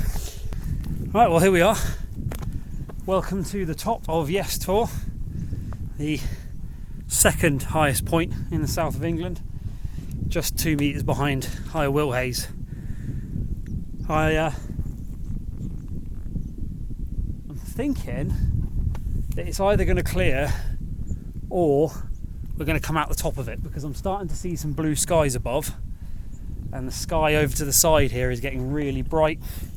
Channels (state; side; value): identical; both; correlation 1.00